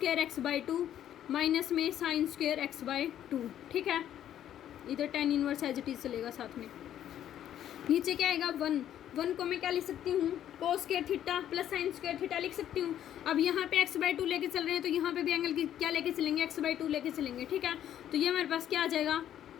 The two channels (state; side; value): quieter; right; 10.9 dB